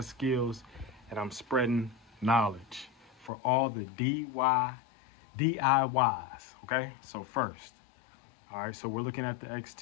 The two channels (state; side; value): drops out; right; at 3.3 s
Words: skills and I'm spreading knowledge for all the DIYs, okay? So first, all right, so we're looking at the